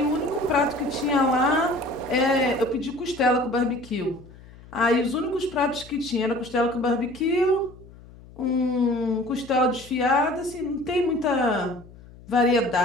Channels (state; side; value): noise; left; hum, 21 dB below the sound